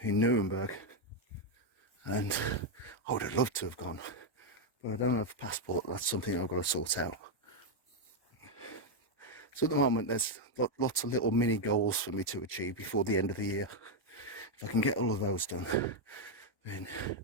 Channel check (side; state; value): right; late; 1.1 ms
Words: Nuremberg, and I would have loved to have gone, but I don't have a passport. That's something I've got to sort out. So at the moment there's lots of little mini goals for me to achieve before the end of the year. If I can get all of those done, then